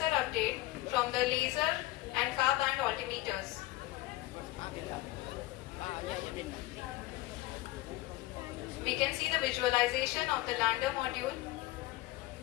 update from the laser and car band altimeters. We can see the visualization of the lander module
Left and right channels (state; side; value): quieter; right; 18.1 dB